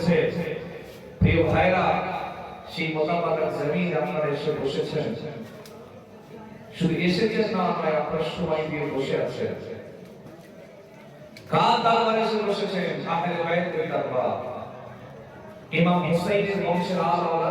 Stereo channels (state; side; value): identical; both; correlation 1.00